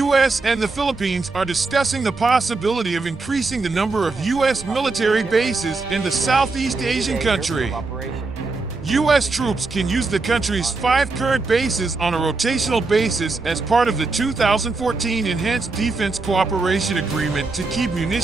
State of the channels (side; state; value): left; quieter; 3.7 dB